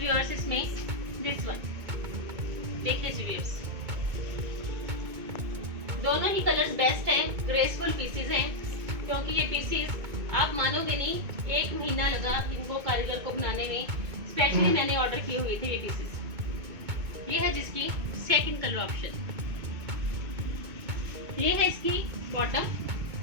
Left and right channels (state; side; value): late; left; 2.2 ms